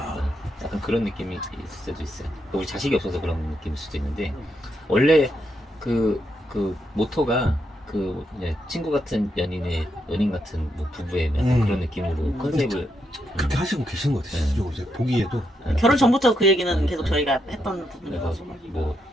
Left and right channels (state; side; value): normal; both; correlation 0.80